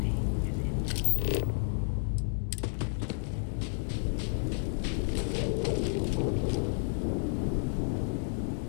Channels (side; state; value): right; silent; 57 dB below the other